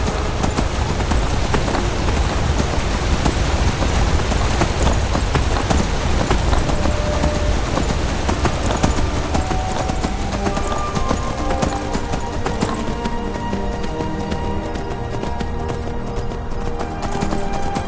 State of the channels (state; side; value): identical; both; correlation 1.00